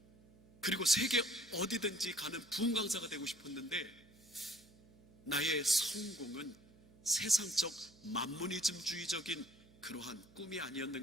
그리고 세계 어디든지 가는 부흥 강사가 되고 싶었는데 나의 성공은 세상적 만모니즘주의적인 그러한 꿈이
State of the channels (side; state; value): right; noise; hum, 25 dB below the sound